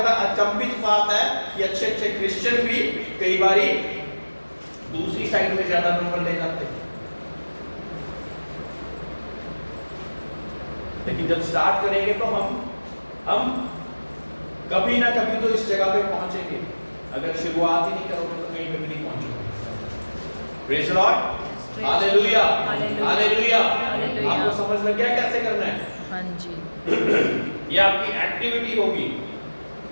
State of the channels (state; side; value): inverted; both; correlation -1.00